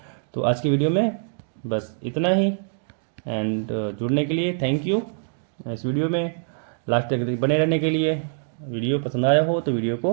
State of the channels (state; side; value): silent; left; digital silence